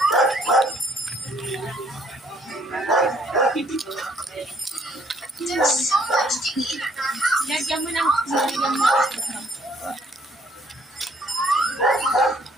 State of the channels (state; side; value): normal; both; correlation 0.64